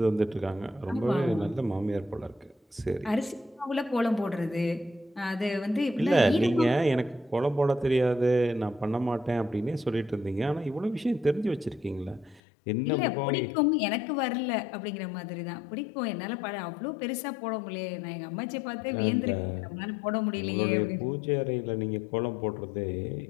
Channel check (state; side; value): drops out; right; at 12.4 s